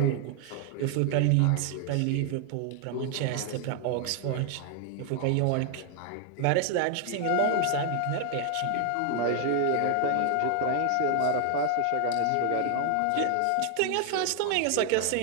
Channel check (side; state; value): both; different; correlation 0.00